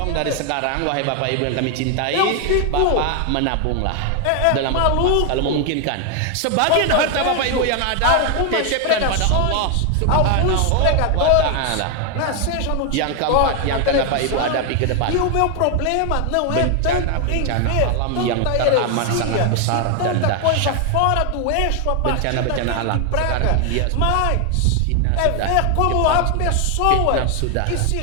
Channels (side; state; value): both; different; correlation 0.01